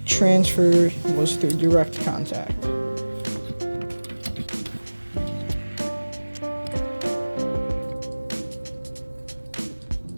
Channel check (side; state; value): both; inverted; correlation -1.00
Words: transfer was through direct contact.